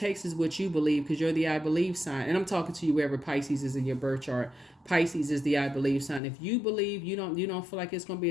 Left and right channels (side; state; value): right; drops out; at 6.2 s